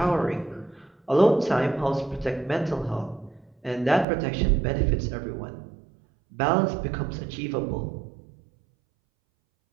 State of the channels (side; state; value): left; drops out; at 4.0 s